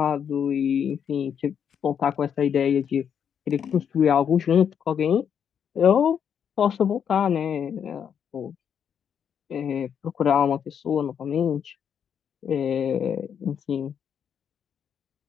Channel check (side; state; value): right; quieter; 8.0 dB